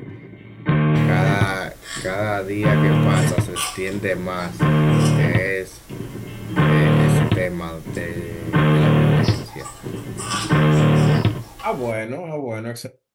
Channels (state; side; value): identical; both; correlation 1.00